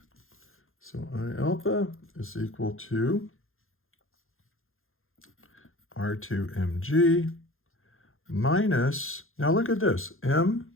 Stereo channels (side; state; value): right; late; 0.60 ms